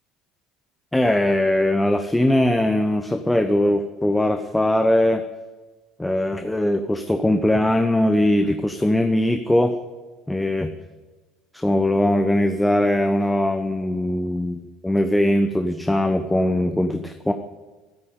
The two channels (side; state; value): both; normal; correlation 0.93